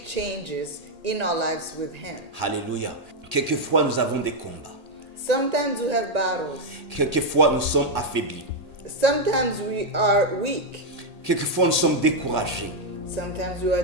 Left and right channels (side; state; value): left; late; 1.9 ms